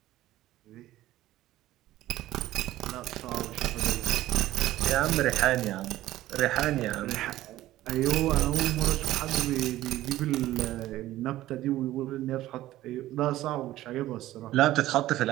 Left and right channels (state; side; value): quieter; left; 15.1 dB